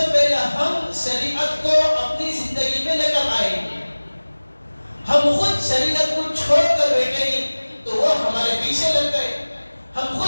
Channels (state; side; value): inverted; both; correlation -1.00